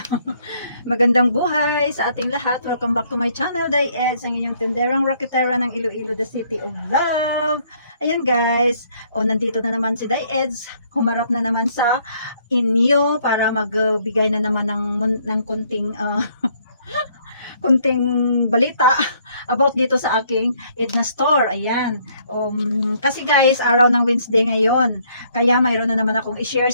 Magandang buhay sa ating lahat. Welcome back to my channel, Diez, ang inyong tinderang rocketera ng Iloilo, the city of love. Ayan guys, nandito na naman si Diez. Humarap na naman sa inyo para magbigay na naman ng kunting kunting balita about dito sa aking Edna store. Ayan. Kasi guys, araw ng Wednesday ngayon. Kaya mayroon na naman akong i-share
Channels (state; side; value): inverted; both; correlation -0.66